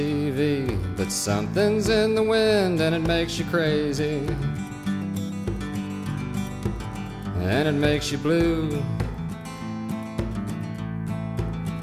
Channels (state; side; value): identical; both; correlation 1.00